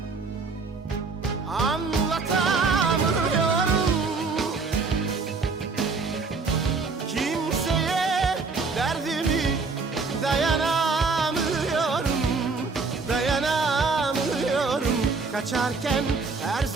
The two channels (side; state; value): left; quieter; 4.4 dB